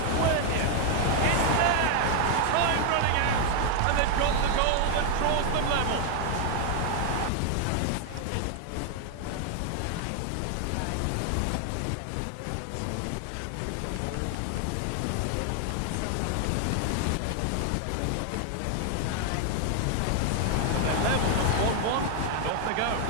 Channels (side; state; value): both; different; correlation 0.00